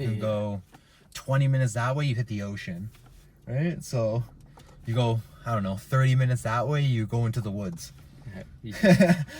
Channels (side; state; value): both; identical; correlation 1.00